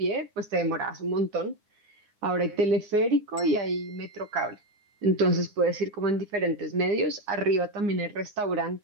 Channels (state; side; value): late; left; 9.6 ms